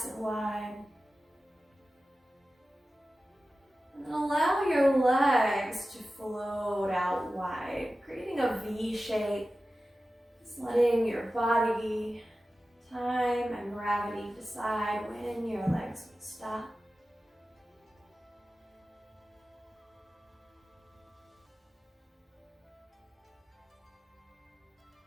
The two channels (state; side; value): normal; both; correlation 0.95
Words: and wide. And then allow your legs to float out wide, creating a V shape. Just letting your body, time, and gravity decide when your legs will stop.